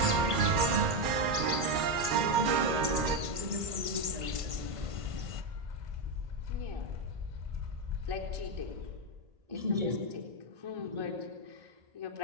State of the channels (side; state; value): left; late; 1.5 ms